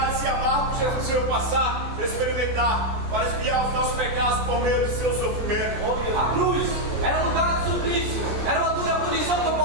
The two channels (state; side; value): late; left; 14 ms